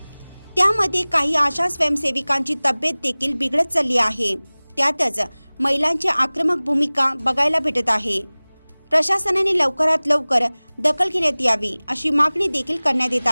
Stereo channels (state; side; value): inverted; both; correlation -1.00